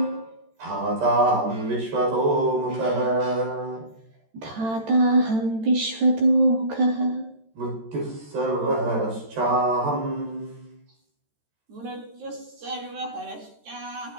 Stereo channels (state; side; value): late; left; 13 ms